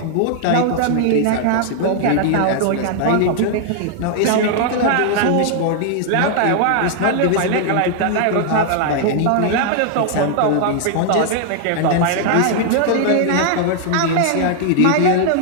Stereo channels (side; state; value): both; different; correlation -0.01